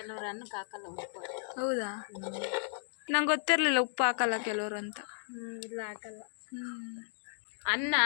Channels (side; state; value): right; silent; digital silence